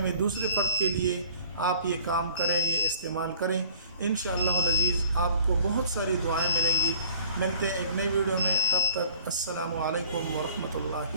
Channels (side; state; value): both; inverted; correlation -0.50